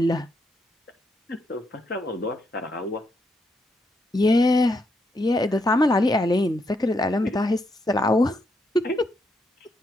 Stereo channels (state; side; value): normal; both; correlation 0.79